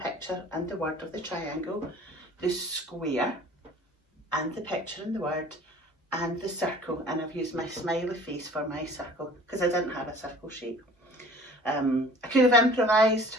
and the word of the triangle, the square and the picture and the word, and the circle, and I've used my smiley face for my circle because I didn't have a circle shape. I could have improvised,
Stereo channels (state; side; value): normal; both; correlation 0.47